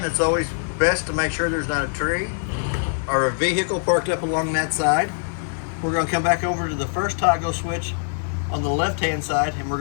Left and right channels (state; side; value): silent; right; digital silence